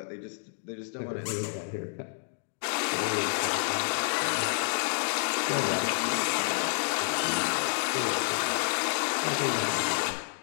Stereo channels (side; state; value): right; silent; digital silence